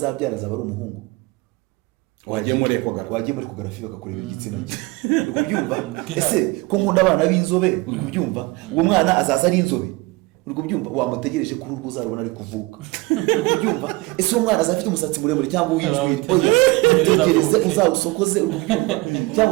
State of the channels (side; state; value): left; quieter; 22.9 dB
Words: azaba ari umuhungu, wagiye muri ekogarafi bakakureba igitsina cye, ubyumva? Ese ko nkunda abana b'inzobe, ubyumva? Uwo mwana azaza ari inzobe, ubyumva? Wamutegereje kuri urwo uzarubona ari kuvuka, ubyumva? Ese uwo mwana azafite umusatsi muremure cyangwa uw'injwiri, oya tegereze uzawusokoze, ubyumva?